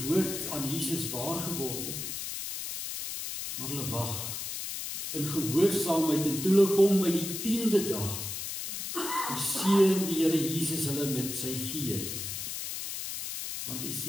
woord aan Jesus waar geword het. Maar hulle wag in gehoorsaamheid en toe hulle kom by die 10de dag, seën die Here Jesus hulle met sy Gees. Want jy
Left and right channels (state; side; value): noise; left; hiss, 5 dB below the sound